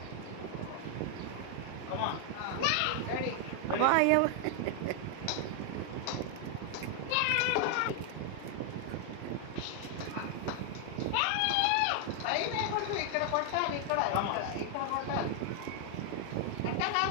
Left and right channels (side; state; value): both; different; correlation 0.00